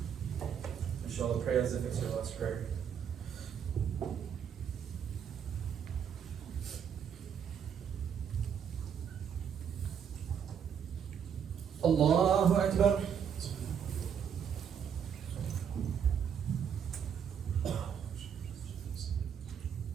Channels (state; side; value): quieter; left; 8.0 dB